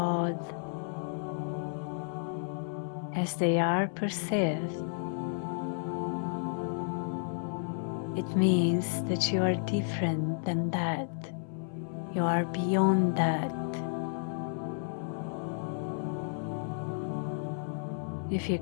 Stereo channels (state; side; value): silent; right; 56 dB below the other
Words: as they are perceived, it means that you are different than that. You are beyond that. If you